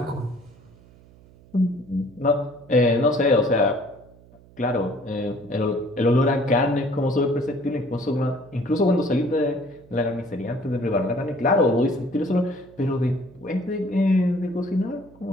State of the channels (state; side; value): noise; right; hum, 25 dB below the sound